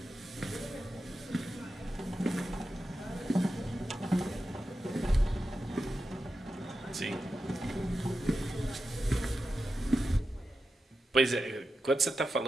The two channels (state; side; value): normal; both; correlation 0.90